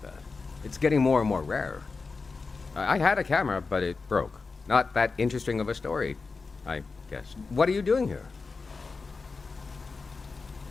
that. It's getting more and more rare. I had a camera, but it broke. Not that interesting of a story, I guess. What are you doing here?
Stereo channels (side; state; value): right; quieter; 4.3 dB